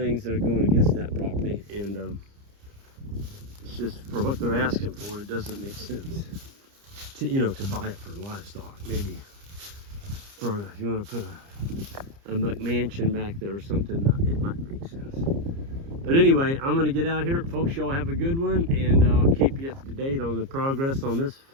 that are going against that property, and it's just for what they're asking for, it doesn't make sense to buy it for livestock. Maybe for if you want to put a McMansion back there or something, it might make sense. But anyway, I'm going to get out here. Folks, y'all have a good one, and I'll keep you up to date on the progress on this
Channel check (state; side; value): late; left; 30 ms